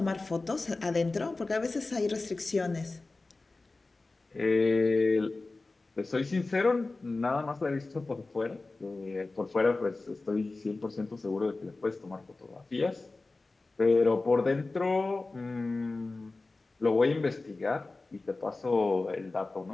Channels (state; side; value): quieter; right; 3.4 dB